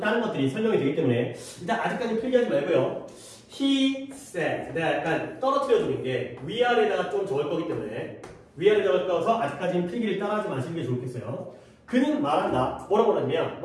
것들이 설명이 되기 때문에 일단 아직까지 필기하지 말고요. He said. 내가 약간 떨어뜨려주는 게 위아래다가 좀 적을 거기 때문에 위아래다가 적어서 아직까지는 필기를 따라하지 마시는 게 좋겠어요. 그는 말한다. 뭐라고 하냐면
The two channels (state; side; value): identical; both; correlation 1.00